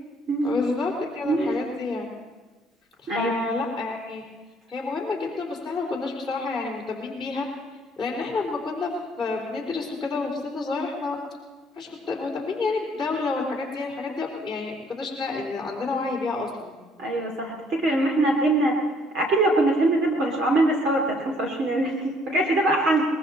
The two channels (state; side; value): normal; both; correlation 0.63